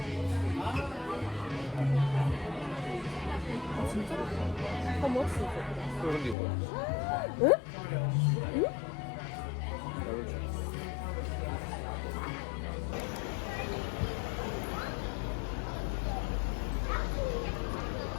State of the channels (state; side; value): drops out; right; at 6.4 s